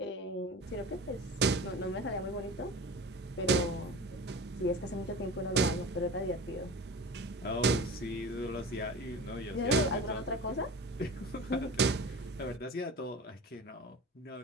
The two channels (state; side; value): normal; both; correlation 0.35